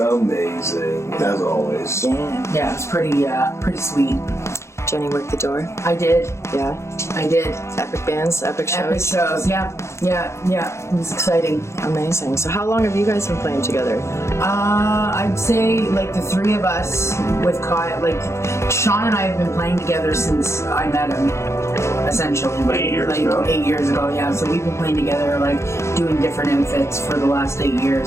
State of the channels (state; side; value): late; right; 0.13 ms